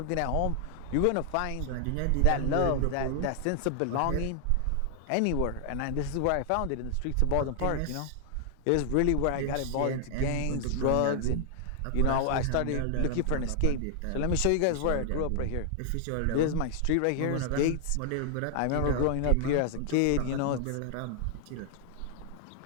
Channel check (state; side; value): different; both; correlation 0.00